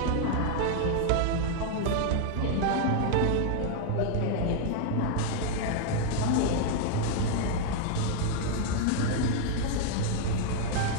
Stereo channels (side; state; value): both; different; correlation 0.00